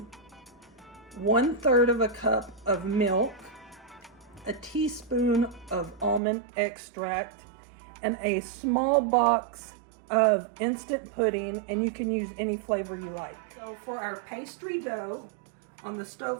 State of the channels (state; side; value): drops out; left; at 6.2 s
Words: 1/3 of a cup of milk, a teaspoon of almond extract, and a small box of instant pudding, and you can use any flavor you like. So for our pastry dough on the